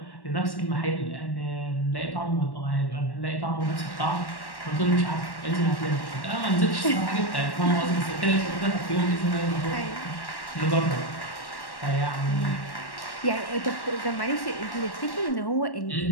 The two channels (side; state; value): right; late; 1.1 ms